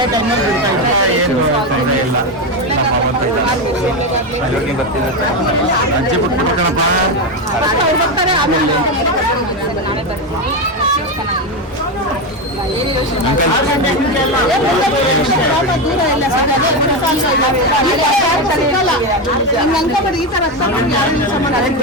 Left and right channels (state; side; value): normal; both; correlation 0.12